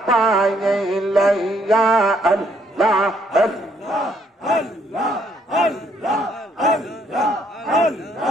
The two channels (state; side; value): normal; both; correlation 0.69